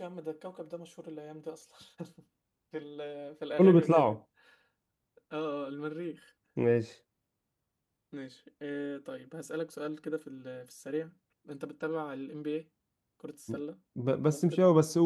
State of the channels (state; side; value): identical; both; correlation 1.00